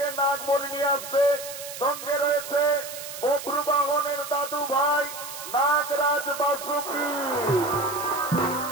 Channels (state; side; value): noise; right; hiss, 10 dB below the sound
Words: নাগমণি নিয়ে আসছে। সঙ্গে রয়েছে বপ্রবাহনের দাদু ভাই নাগরাজ বাসুকী।